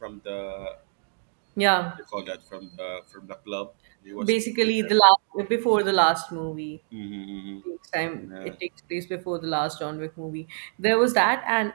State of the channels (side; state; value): left; silent; digital silence